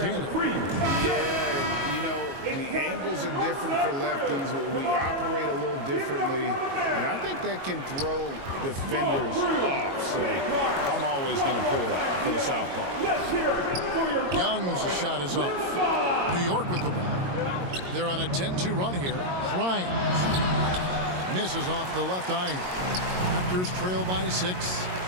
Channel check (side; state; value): left; late; 22 ms